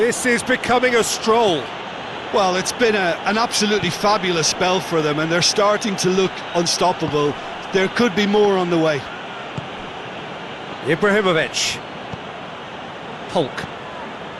is becoming a stroll. Well, it's been an absolutely fabulous spell for them, and they're starting to look unstoppable. There could be more on the way. Ibrahimovic. Hulk.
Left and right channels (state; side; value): identical; both; correlation 1.00